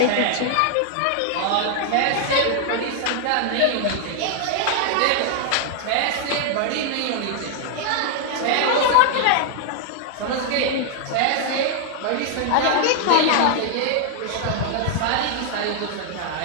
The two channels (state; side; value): different; both; correlation 0.00